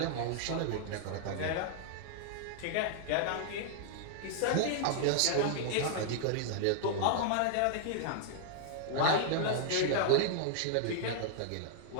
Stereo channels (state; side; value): different; both; correlation -0.01